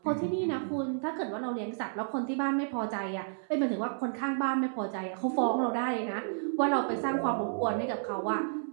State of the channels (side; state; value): left; silent; 57 dB below the other